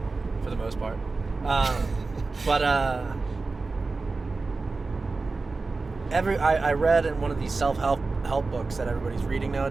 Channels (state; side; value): quieter; left; 3.8 dB